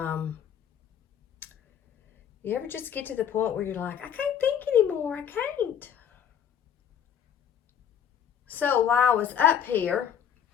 You ever just get to the point where you're like, I can't think anymore. I can't. So while I was up here,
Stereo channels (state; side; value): quieter; right; 8.8 dB